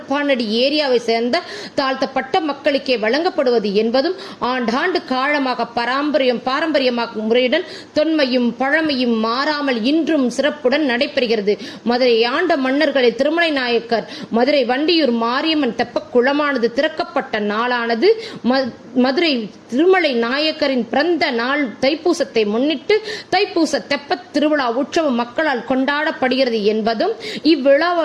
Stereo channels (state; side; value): identical; both; correlation 1.00